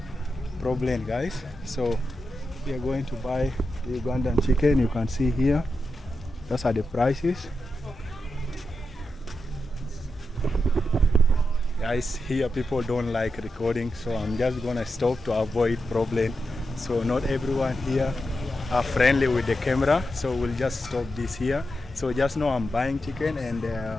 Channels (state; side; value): normal; both; correlation 0.88